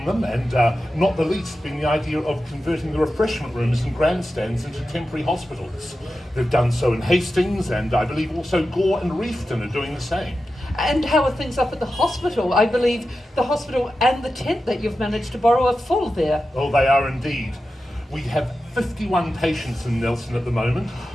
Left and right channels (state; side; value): normal; both; correlation 0.92